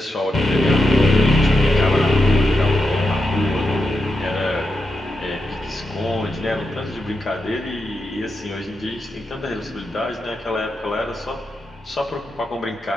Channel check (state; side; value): normal; both; correlation 0.87